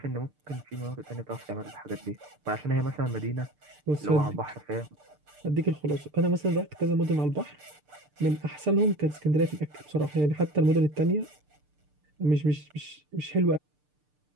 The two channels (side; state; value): left; late; 6.7 ms